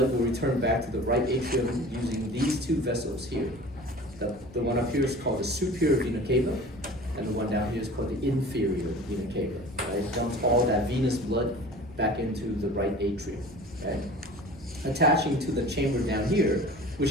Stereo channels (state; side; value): normal; both; correlation 0.41